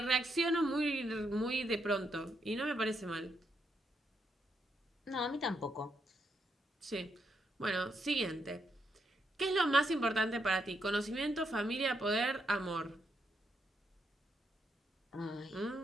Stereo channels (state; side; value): normal; both; correlation 0.79